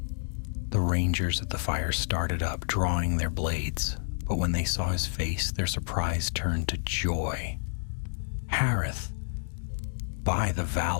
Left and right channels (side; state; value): right; silent; digital silence